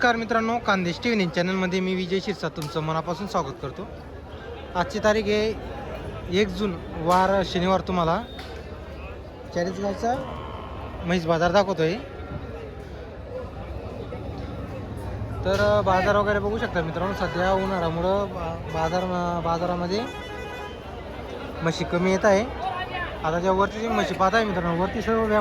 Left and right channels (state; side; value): identical; both; correlation 1.00